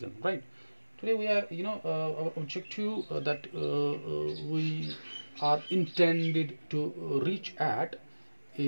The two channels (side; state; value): both; inverted; correlation -1.00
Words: right? Today we are our objective that we are intended to reach at